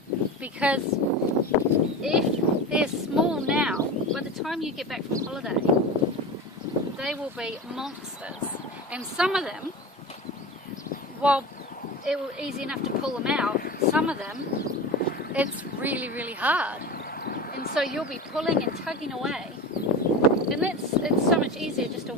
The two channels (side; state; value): both; normal; correlation 0.28